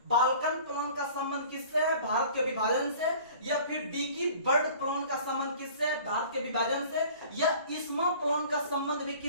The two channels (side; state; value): both; inverted; correlation -0.47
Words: बाल्कन प्लान का संबंध किससे है? भारत के विभाजन से। या फिर डिकी बर्ड प्लान का संबंध किससे है? भारत के विभाजन से। या इस्मा प्लान का संबंध भी